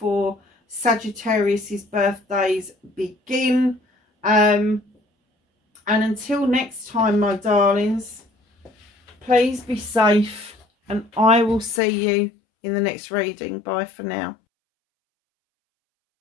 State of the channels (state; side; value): drops out; right; at 11.8 s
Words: Sagittarius's birthdays begin. And until next time, my darlings, please be safe and I will see you in the next reading. Bye for now.